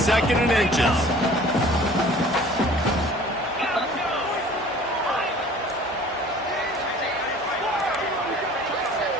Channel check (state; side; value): normal; both; correlation 0.48